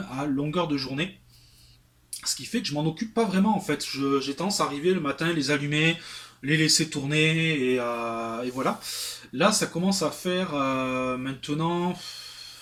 à longueur de journée. Ce qui fait que je m'en occupe pas vraiment en fait. J'ai tendance à arriver le matin, les allumer, les laisser tourner et voilà. Là, ça commence à faire maintenant,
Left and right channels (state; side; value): identical; both; correlation 1.00